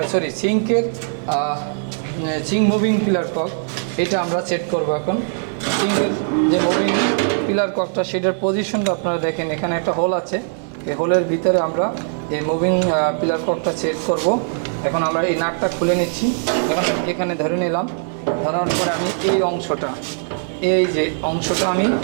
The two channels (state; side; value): silent; left; digital silence